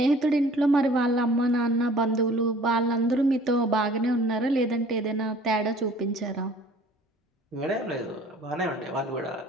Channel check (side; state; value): both; normal; correlation 0.51